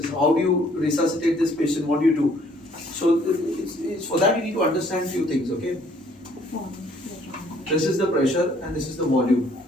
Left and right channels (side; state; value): both; normal; correlation 0.61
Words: How do you resuscitate this patient? What do you do? So, it's for that you need to understand few things, okay? This is the pressure and this is the volume.